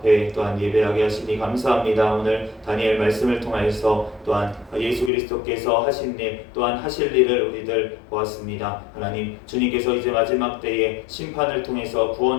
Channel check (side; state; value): right; drops out; at 5.1 s